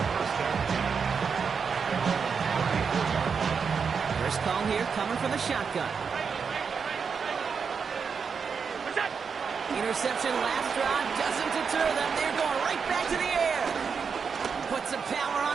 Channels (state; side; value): quieter; left; 5.9 dB